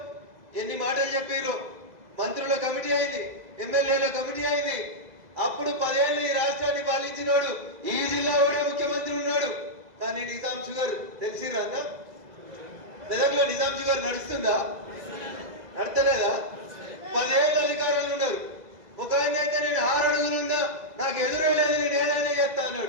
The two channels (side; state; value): left; late; 2.0 ms